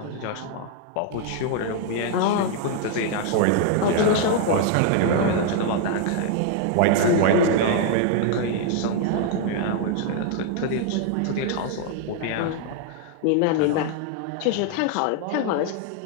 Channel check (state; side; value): different; both; correlation 0.00